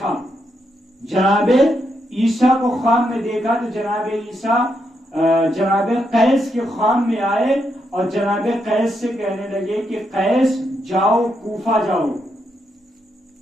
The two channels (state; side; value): normal; both; correlation 0.80